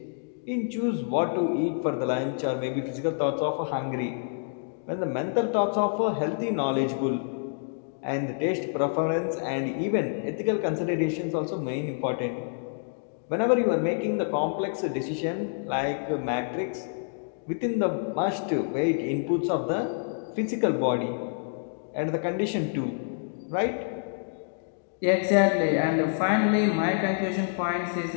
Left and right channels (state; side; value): silent; right; digital silence